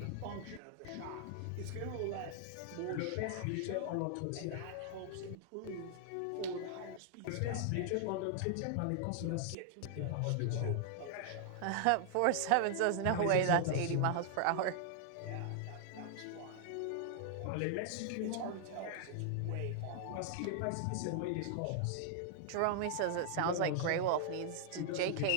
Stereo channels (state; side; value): different; both; correlation -0.01